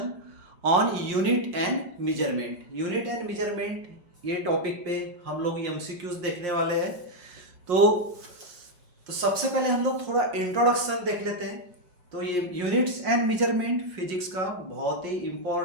on unit and measurement ये टॉपिक पे हम लोग एमसीक्यूज देखने वाले हैं। तो सबसे पहले हम लोग थोड़ा इंट्रोडक्शन देख लेते हैं। तो ये यूनिट्स एंड मेजरमेंट फिजिक्स का बहुत ही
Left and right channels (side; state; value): left; late; 5.7 ms